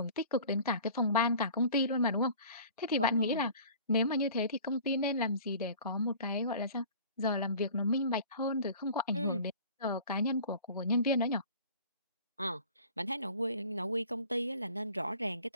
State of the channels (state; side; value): inverted; both; correlation -0.45